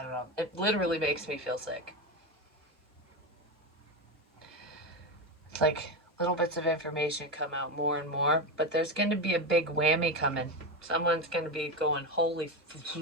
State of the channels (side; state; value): both; normal; correlation 0.15